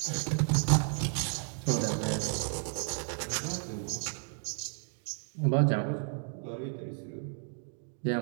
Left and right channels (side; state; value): left; silent; 56 dB below the other